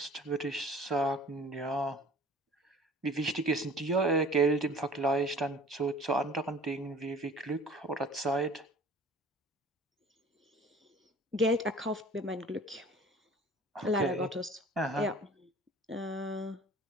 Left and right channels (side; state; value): both; normal; correlation 0.47